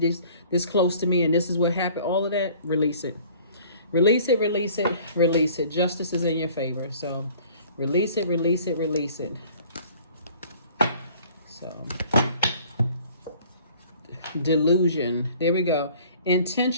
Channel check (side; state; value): both; inverted; correlation -0.52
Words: this close to me, and this is what happened. All of that, release it. Release it, release it, release it. Justice is in your favor. So release it, release it, release it. So delusion. There we go.